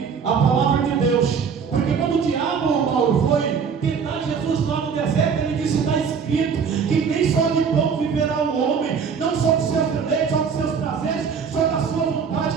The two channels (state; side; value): quieter; left; 6.3 dB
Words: a palavra de Deus. Porque quando o diabo, Paulo, foi tentar Jesus lá no deserto, ele disse: está escrito que nem só de pão viverá o homem, não só dos seus deleites, só dos seus prazeres, só da sua vontade,